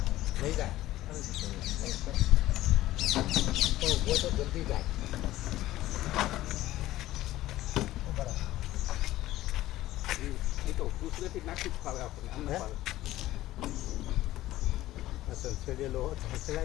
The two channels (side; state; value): right; quieter; 15.5 dB